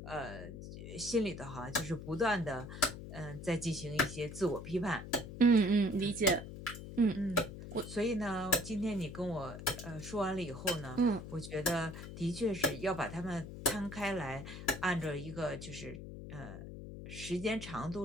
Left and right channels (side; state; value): left; noise; hum, 10 dB below the sound